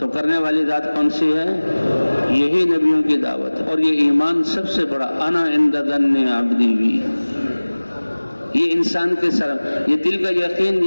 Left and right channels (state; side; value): inverted; both; correlation -1.00